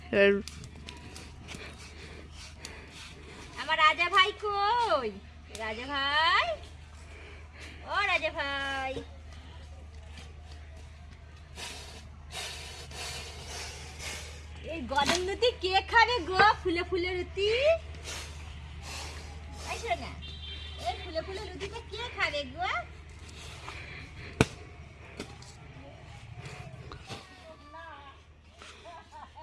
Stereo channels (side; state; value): both; identical; correlation 1.00